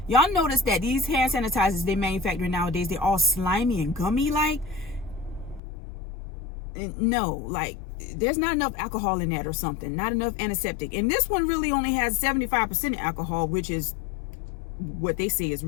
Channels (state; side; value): drops out; right; at 5.6 s